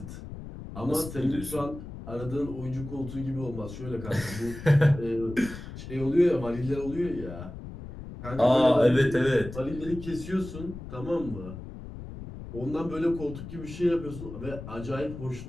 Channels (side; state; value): left; noise; rumble, 11 dB below the sound